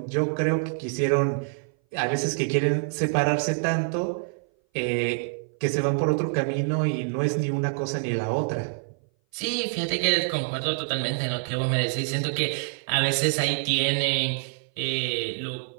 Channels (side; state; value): left; silent; 58 dB below the other